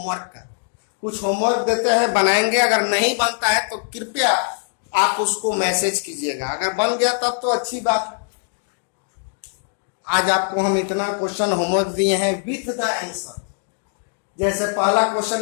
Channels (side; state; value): right; silent; 65 dB below the other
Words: का, कुछ होमवर्क देते हैं बनाएंगे, अगर नहीं बनता है तो कृपया आप उसको मैसेज कीजिएगा, अगर बन गया तब तो अच्छी बात। आज आपको हम इतना क्वेश्चन होमवर्क दिए हैं विथ द आंसर। जैसे पहला